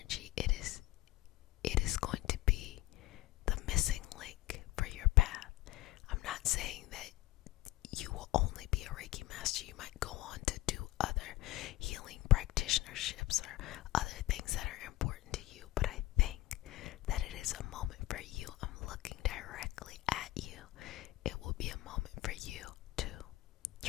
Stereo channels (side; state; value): right; quieter; 17.6 dB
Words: It is going to be the missing link for your path. I'm not saying that you will only be a Reiki master. You might go on to do other healing practitionerships or other things that are important to you, but I think that it is a moment for you. I'm looking directly at you. It will be a moment for you to